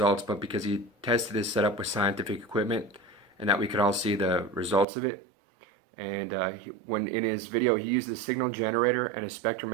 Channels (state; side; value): drops out; left; at 4.9 s